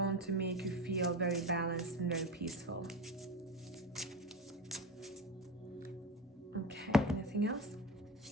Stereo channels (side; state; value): both; normal; correlation 0.26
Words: to make you feel very balanced and very peaceful. Okay, anything else?